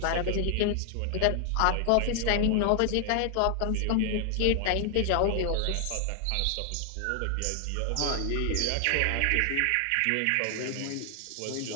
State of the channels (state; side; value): different; both; correlation 0.00